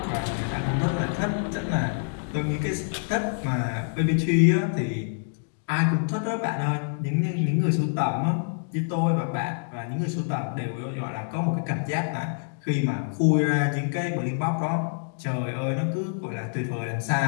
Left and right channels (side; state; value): right; silent; digital silence